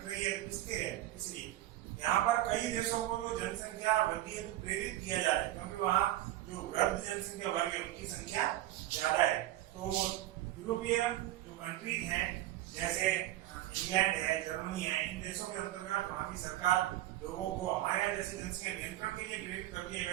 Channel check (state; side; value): quieter; left; 14.8 dB